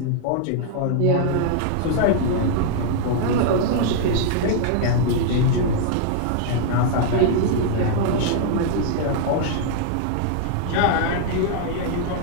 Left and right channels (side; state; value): both; different; correlation -0.01